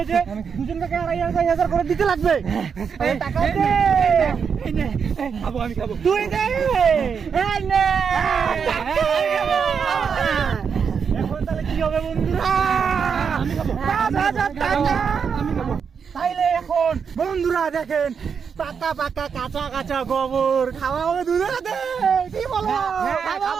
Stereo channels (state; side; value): quieter; left; 6.5 dB